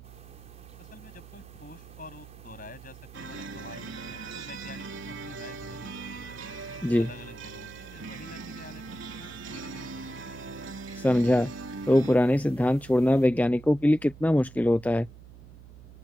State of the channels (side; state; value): right; noise; hum, 18 dB below the sound